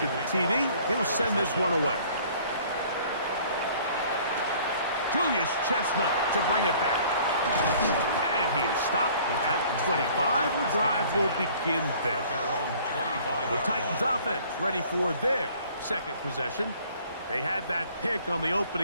the TD, he'll send this one away. Julius Chestnut to bring it back. And he is stopped at the 25. The drive will begin there. The Titans offense ready for their second possession. They had that pick on the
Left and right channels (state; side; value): inverted; both; correlation -0.54